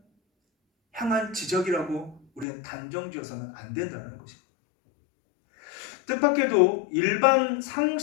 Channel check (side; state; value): right; drops out; at 2.5 s